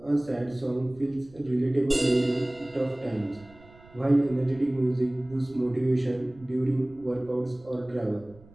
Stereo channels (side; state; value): right; noise; rumble, 24 dB below the sound